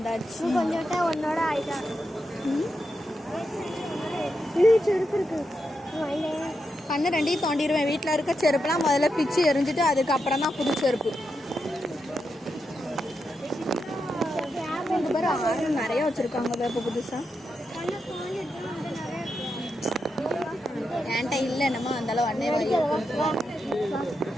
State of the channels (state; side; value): normal; both; correlation 0.85